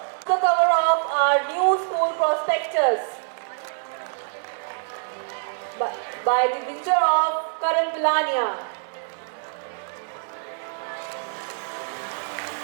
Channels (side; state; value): left; silent; 62 dB below the other